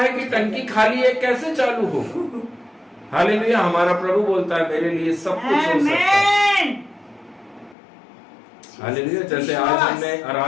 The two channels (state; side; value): drops out; right; at 7.8 s